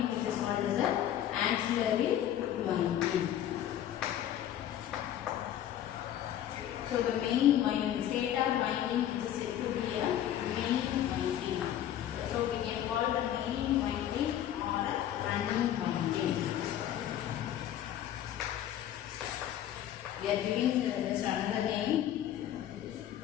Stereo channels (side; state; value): right; quieter; 11.3 dB